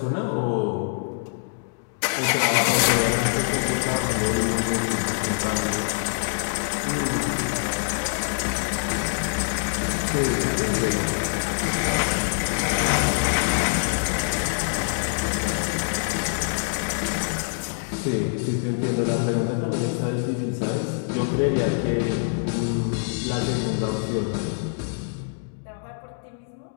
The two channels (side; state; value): right; silent; digital silence